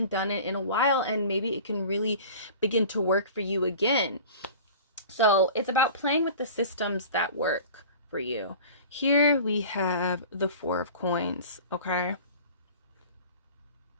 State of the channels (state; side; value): inverted; both; correlation -0.40